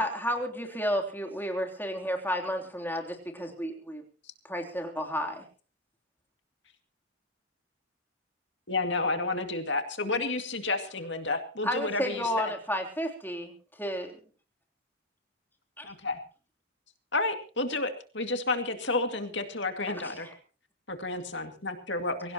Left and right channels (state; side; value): normal; both; correlation 0.06